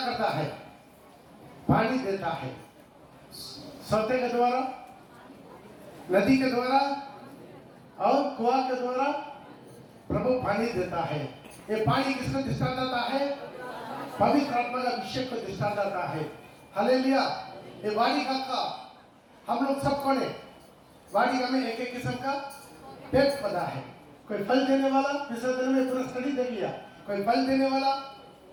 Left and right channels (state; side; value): identical; both; correlation 1.00